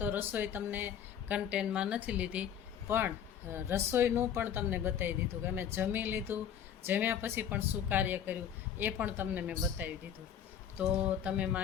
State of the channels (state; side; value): quieter; right; 8.9 dB